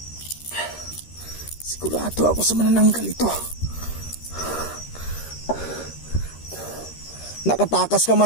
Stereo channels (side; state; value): right; late; 13 ms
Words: Sigurado ako sa manananggal ito. Nakatakas ka